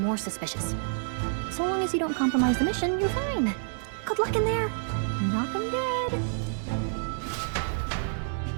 suspicious. So long as you don't compromise the mission, you're fine. Good luck in there. Knock 'em dead.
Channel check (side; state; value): left; silent; digital silence